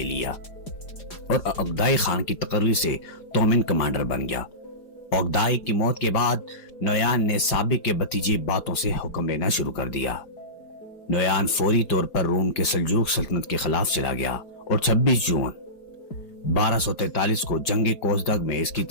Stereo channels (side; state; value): right; late; 4.9 ms